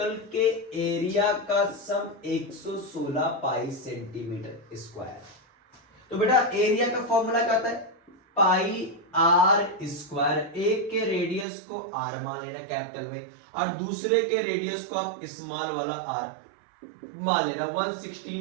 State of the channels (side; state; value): left; drops out; at 11.5 s